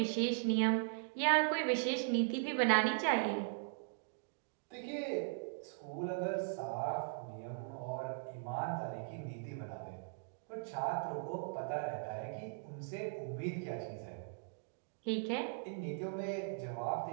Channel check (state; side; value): silent; left; digital silence